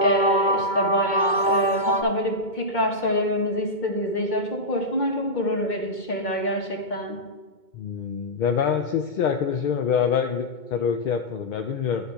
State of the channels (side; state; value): right; late; 2.2 ms